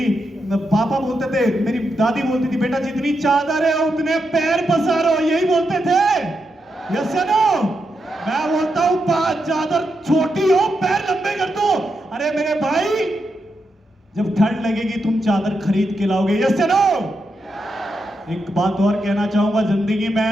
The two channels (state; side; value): normal; both; correlation 0.84